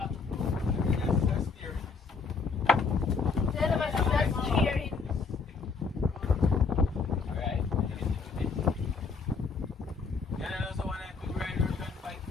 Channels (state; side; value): quieter; right; 4.8 dB